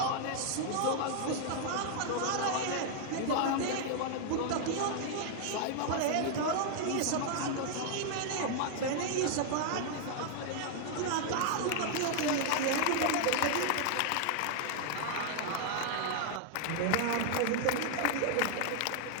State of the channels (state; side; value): different; both; correlation 0.00